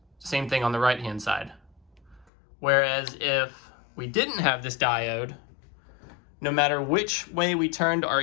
same thing on the right hand side. Whereas if we didn't have this diode, no matter which way we turned our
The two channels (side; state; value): right; drops out; at 2.2 s